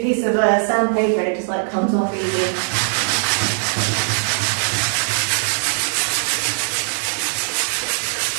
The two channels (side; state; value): left; silent; digital silence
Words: of sandpaper and it just like comes off easy.